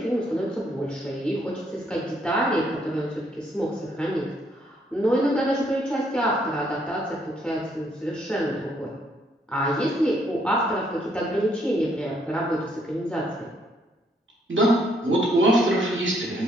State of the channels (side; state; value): both; normal; correlation 0.70